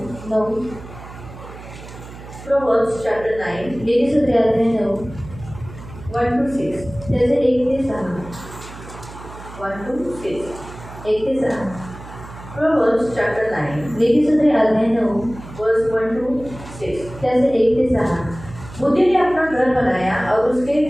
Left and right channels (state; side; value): noise; right; hum, 15 dB below the sound